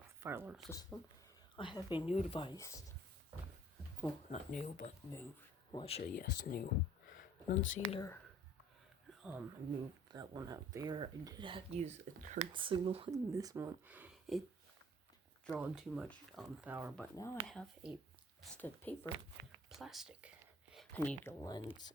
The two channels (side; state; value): both; normal; correlation 0.53